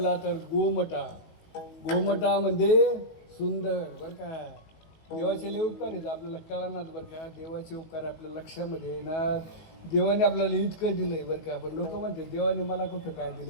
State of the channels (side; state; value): right; late; 19 ms